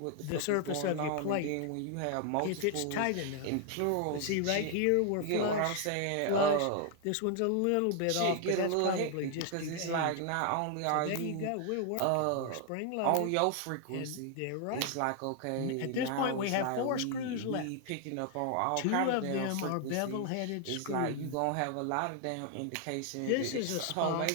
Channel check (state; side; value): different; both; correlation 0.00